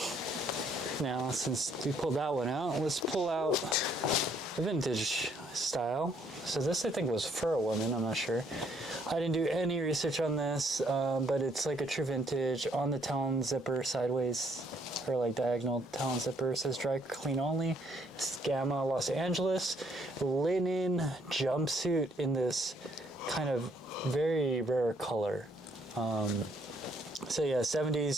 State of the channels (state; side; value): normal; both; correlation 0.68